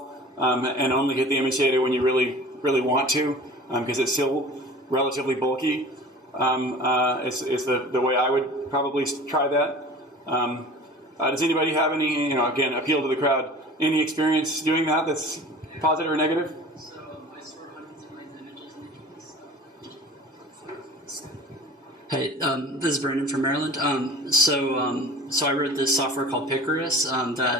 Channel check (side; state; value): both; normal; correlation 0.41